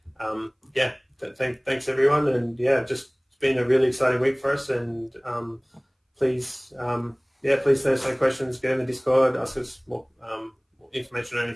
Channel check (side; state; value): both; identical; correlation 1.00